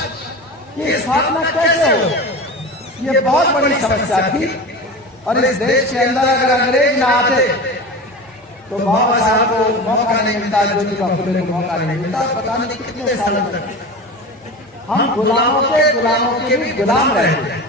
की स्थापना कैसे हो? ये बहुत बड़ी समस्या थी। और इस देश के अंदर अगर अंग्रेज ना आते तो बाबा साहब को मौका नहीं मिलता, ज्योतिबा फुले को मौका नहीं मिलता। पता नहीं कितने सालों तक हम गुलामों के भी गुलाम रहे।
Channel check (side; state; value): both; normal; correlation 0.30